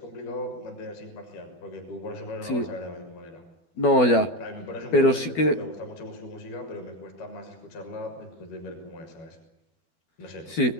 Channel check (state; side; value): late; right; 12 ms